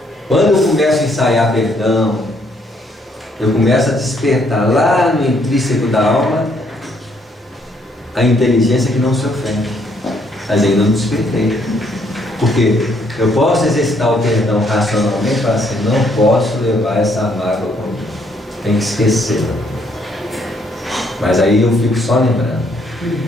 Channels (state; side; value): normal; both; correlation 0.69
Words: Quando eu começo a ensaiar perdão, eu começo a despertar lá no intrínseco da alma a inteligência que não se ofende, mas ainda não despertei. Porque eu posso exercitar o perdão racionalmente, para assim, não posso levar essa mágoa comigo, tem que esquecer. Mas aí eu fico só lembrando.